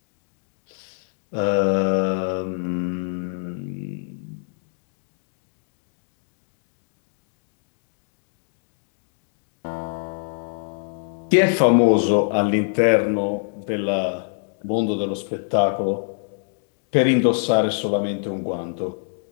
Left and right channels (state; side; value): silent; right; digital silence